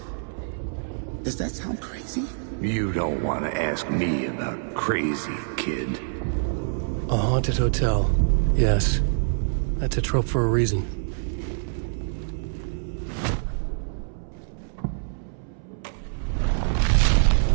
Does that sound crazy? You don't want to ask me about crazy, kid. A haunted hotel. Yes. That's a trope for a reason.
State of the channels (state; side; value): silent; left; 61 dB below the other